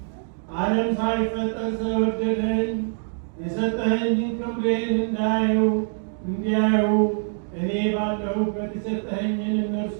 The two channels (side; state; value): left; silent; digital silence